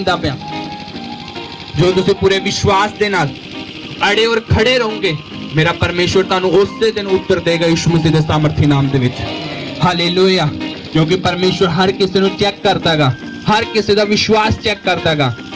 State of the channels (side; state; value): both; identical; correlation 1.00